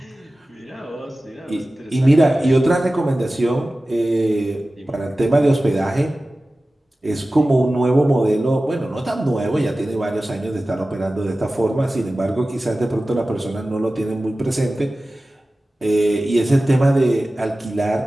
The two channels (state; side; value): normal; both; correlation 0.96